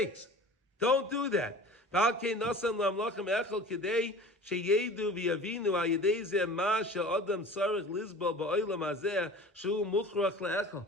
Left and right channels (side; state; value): both; normal; correlation 0.41